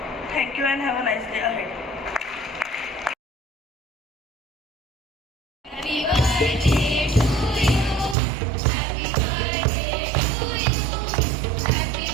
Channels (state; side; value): drops out; left; at 8.2 s